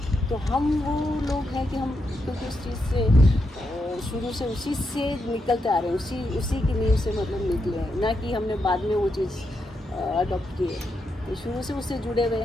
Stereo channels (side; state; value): both; normal; correlation 0.83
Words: तो हम वो लोग हैं कि हम क्योंकि उस चीज़ से शुरू से उसी से निकलते आ रहे हैं, उसी की नींव से मतलब निकले हैं, ना कि हमने बाद में वो चीज़ अडॉप्ट की है। तो शुरू से उससे जुड़े हुए